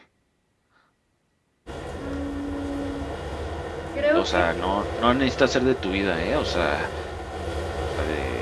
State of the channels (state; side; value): identical; both; correlation 1.00